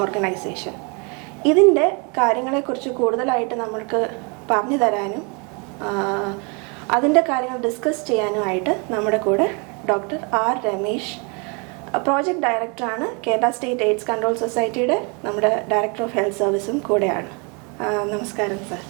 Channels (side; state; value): left; quieter; 33.1 dB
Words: ഓർഗനൈസേഷൻ. ഇതിൻ്റെ കാര്യങ്ങളെക്കുറിച്ച് കൂടുതലായിട്ട് നമ്മൾക്ക് പറഞ്ഞു തരാനും അതിൻ്റെ കാര്യങ്ങൾ ഡിസ്കസ് ചെയ്യാനുമായിട്ട് നമ്മുടെ കൂടെ ഡോക്ടർ R. രമേശ്, പ്രോജക്റ്റ് ഡയറക്ടറാണ്, കേരള സ്റ്റേറ്റ് എയ്ഡ്സ് കൺട്രോൾ സൊസൈറ്റിയുടെ നമ്മുടെ ഡയറക്ടർ ഓഫ് ഹെൽത്ത് സർവീസും കൂടെയാണ്. നമസ്കാരം സർ.